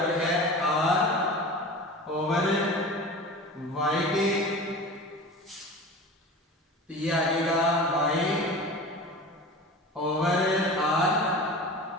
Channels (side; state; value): both; normal; correlation 0.35